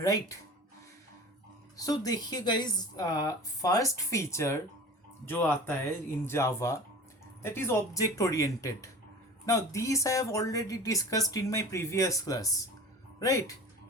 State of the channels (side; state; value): both; normal; correlation 0.38